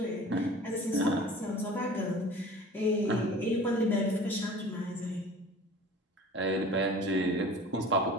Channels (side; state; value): both; normal; correlation 0.43